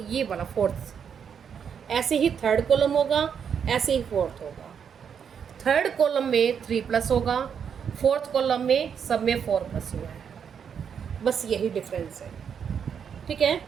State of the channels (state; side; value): quieter; left; 7.4 dB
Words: फोर्थ, ऐसे ही थर्ड कॉलम होगा, ऐसे ही फोर्थ होगा। थर्ड कॉलम में 3 प्लस होगा, फोर्थ कॉलम में सब में 4 प्लस हुआ है, बस यही डिफरेंस है। ठीक है,